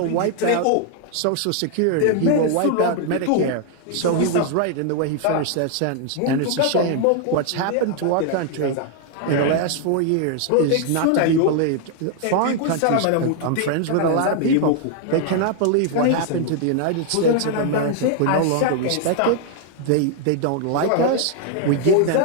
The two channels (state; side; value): different; both; correlation 0.00